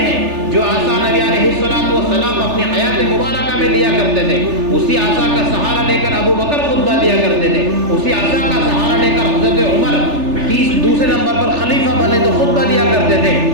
جو عصا نبی علیہ السلام اپنی حیات مبارکہ میں لیا کرتے تھے. اسی عصا کا سہارا لے کر ابو بکر خطبہ دیا کرتے تھے. اسی عصا کا سہارا لے کر حضرت عمر دوسرے نمبر پر خلیفہ بنے تو خطبہ دیا کرتے تھے.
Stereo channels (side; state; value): left; late; 3.4 ms